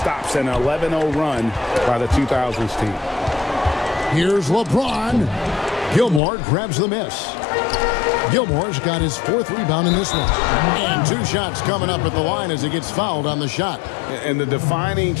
an 11-0 run by the 2000s team. Here's LeBron. Gilmore grabs the miss. Gilmore's got his 4th rebound in this one. And 2 shots coming up at the line as he gets fouled on the shot. And the defining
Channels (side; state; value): right; drops out; at 6.2 s